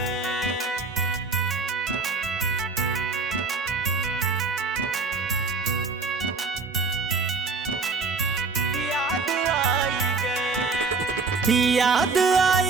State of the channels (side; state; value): left; quieter; 4.2 dB